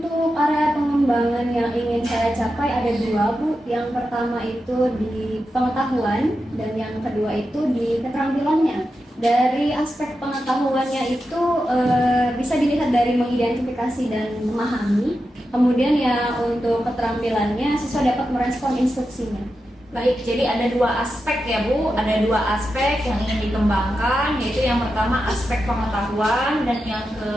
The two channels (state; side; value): normal; both; correlation 0.89